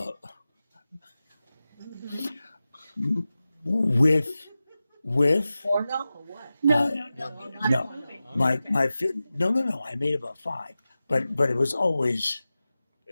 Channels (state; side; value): inverted; both; correlation -0.95